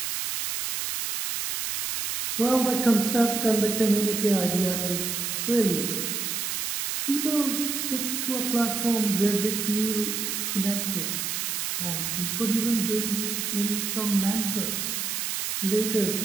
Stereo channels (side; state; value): right; noise; hiss, 2 dB below the sound